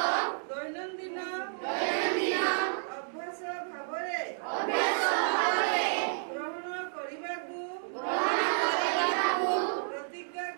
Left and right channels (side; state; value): left; silent; digital silence